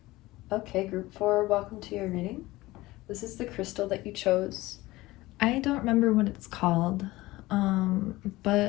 Okay, group 4, welcome to your reading. This is the crystal that you chose. I don't remember what it's called,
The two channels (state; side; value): quieter; right; 19.0 dB